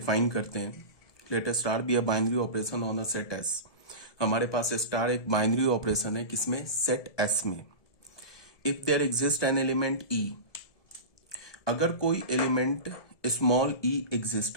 करते हैं। Let star B a binary operation on a set S. हमारे पास स्टार एक बाइनरी ऑपरेशन है, किसमें? सेट एस में। If there exist an element e, अगर कोई एलिमेंट स्मॉल ई एग्जिस्ट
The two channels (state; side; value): late; right; 1.7 ms